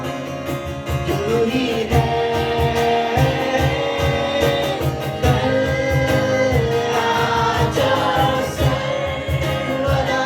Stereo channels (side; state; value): both; identical; correlation 1.00